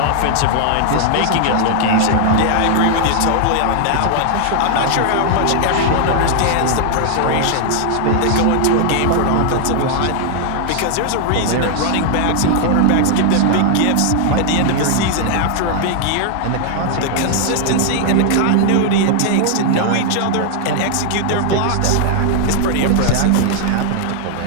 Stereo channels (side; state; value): both; different; correlation 0.00